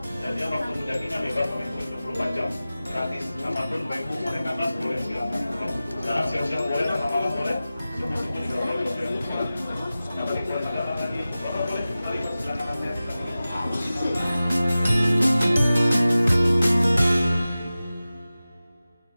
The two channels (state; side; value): inverted; both; correlation -0.96